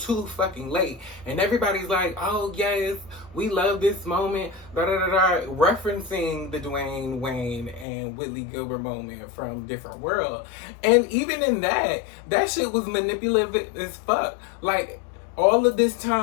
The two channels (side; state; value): right; drops out; at 7.9 s